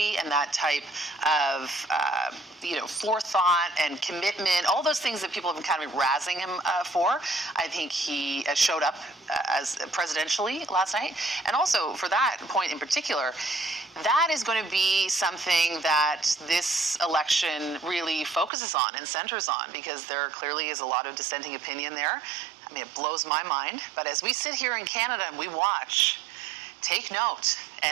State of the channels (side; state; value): left; drops out; at 18.5 s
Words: and that type of, forethought and commitment, all those things that people have been kind of razzing him for. I think he showed up as presidentially last night. And also, for that point in particular, that is going to be something that this election really focuses on and centers on, because there clearly is a lot of dissenting opinion there. I mean, it blows my mind. But as we sit here in Canada and we watch, take note